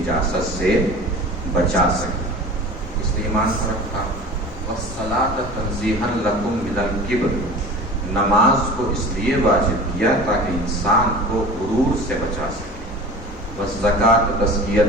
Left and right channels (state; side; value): normal; both; correlation 0.38